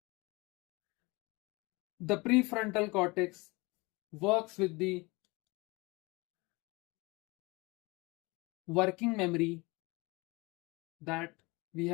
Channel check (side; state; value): right; quieter; 25.0 dB